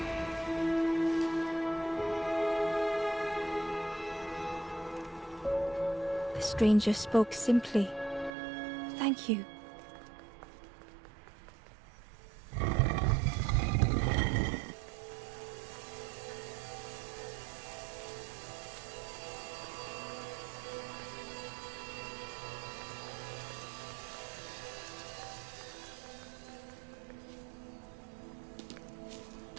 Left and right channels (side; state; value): left; drops out; at 8.3 s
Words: The stranger spoke simply. Thank you.